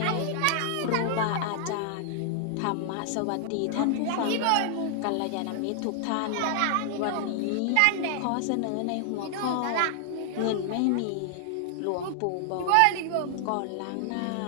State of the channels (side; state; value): both; different; correlation -0.01